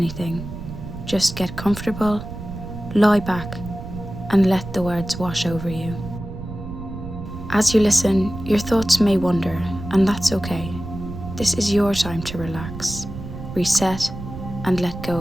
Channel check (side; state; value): right; noise; rumble, 10 dB below the sound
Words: Just get comfortable, lie back, and let the words wash over you. As you listen, your thoughts may wander, and that's okay. This is your time to relax, reset, and let go